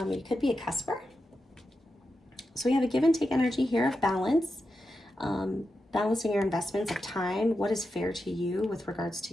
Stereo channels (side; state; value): both; normal; correlation 0.89